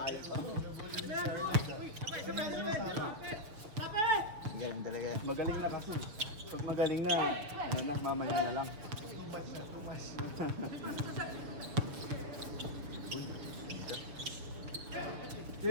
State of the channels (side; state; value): left; late; 6.6 ms